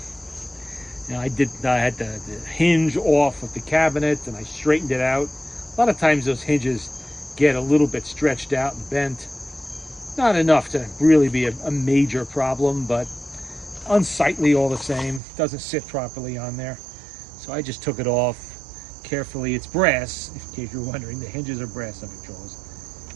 You know, I had the hinge off of the cabinet and I straightened it out. A lot of times those hinges get a little bit stretched out and bent. Not enough to really be a major problem, but unsightly all the same. Doesn't sit properly on there. So I just took it off carefully. It's brass, in case you're wondering. The hinges are brass on Victrolas.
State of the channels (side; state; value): left; drops out; at 15.2 s